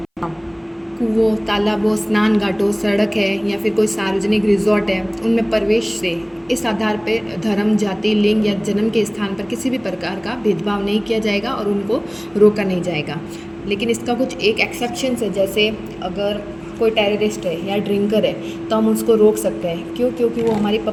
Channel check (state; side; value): identical; both; correlation 1.00